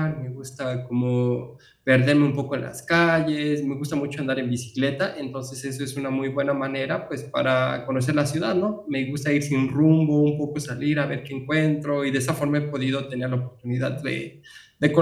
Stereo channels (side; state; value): both; identical; correlation 1.00